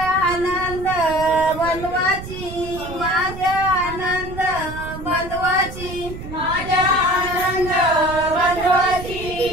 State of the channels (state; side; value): noise; right; rumble, 11 dB below the sound